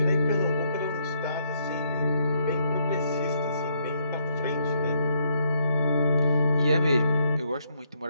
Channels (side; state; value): both; inverted; correlation -0.73